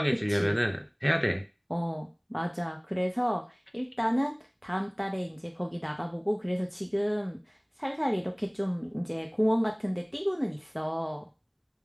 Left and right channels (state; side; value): identical; both; correlation 1.00